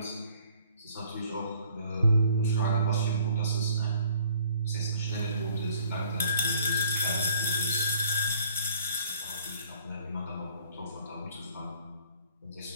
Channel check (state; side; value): inverted; both; correlation -0.57